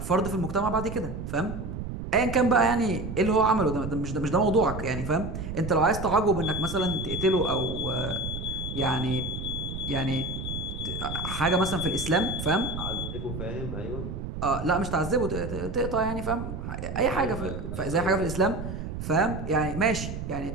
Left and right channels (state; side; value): noise; right; rumble, 6 dB below the sound